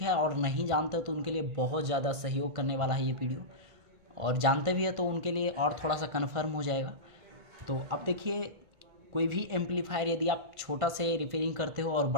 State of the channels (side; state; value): left; late; 1.5 ms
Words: है, और नहीं जानते हो तो उनके लिए बहुत ज़्यादा सहयोग करने वाला है ये वीडियो, और जानते भी है तो उनके लिए और थोड़ा सा कन्फर्म हो जाएगा। तो अब देखिए, कोई भी एम्पलीफायर यदि आप छोटा से रिपेयरिंग करते हो और